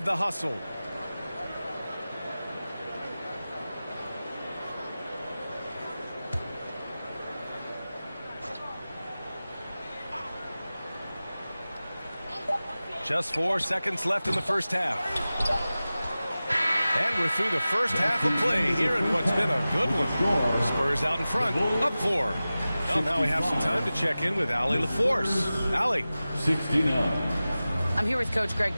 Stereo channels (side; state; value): both; inverted; correlation -0.96